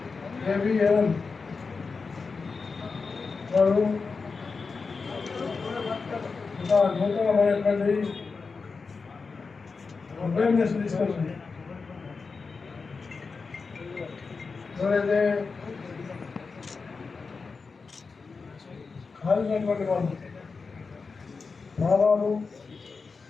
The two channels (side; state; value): right; quieter; 4.6 dB